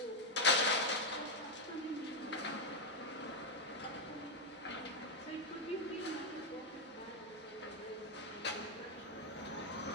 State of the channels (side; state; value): both; normal; correlation 0.04